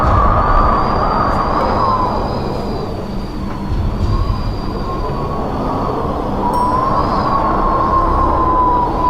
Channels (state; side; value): identical; both; correlation 1.00